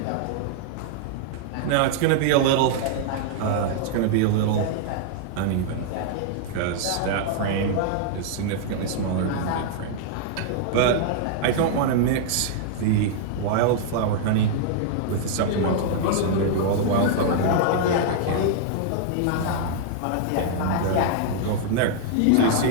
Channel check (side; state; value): both; different; correlation -0.01